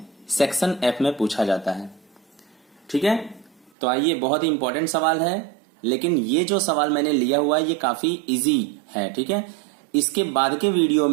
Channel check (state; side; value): drops out; left; at 3.7 s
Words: सेक्शन F में पूछा जाता है। ठीक है, तो आइए, बहुत ही इंपॉर्टेंट सवाल है, लेकिन ये जो सवाल मैंने लिया हुआ है ये काफी इजी है। ठीक है, इसके बाद के वीडियो